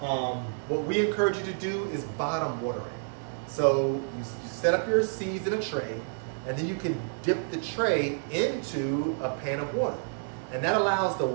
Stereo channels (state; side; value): silent; left; digital silence